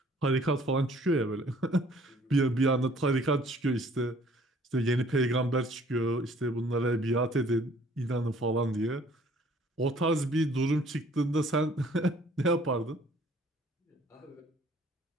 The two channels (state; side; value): normal; both; correlation 0.57